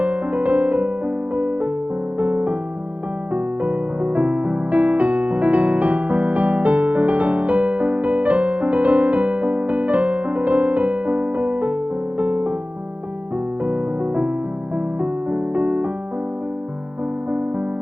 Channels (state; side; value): late; left; 0.065 ms